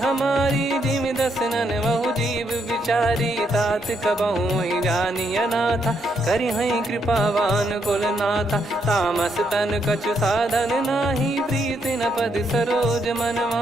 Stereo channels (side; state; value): both; normal; correlation 0.76